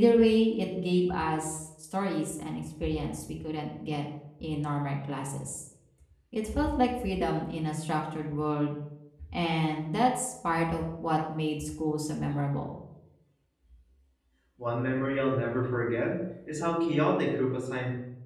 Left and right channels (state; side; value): identical; both; correlation 1.00